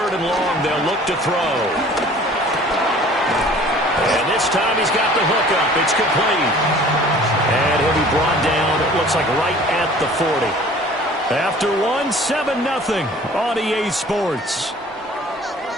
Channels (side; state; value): both; normal; correlation 0.49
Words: and long, they'll look to throw. And this time he's got the hook up. It's complete. And he'll be brought down, it looks like right at the 40. After 7-0 on EA Sports.